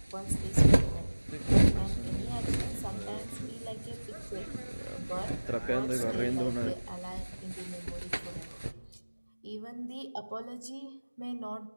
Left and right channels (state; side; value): inverted; both; correlation -1.00